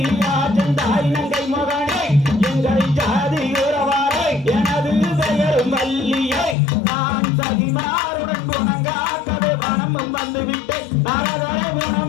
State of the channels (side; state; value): right; drops out; at 6.6 s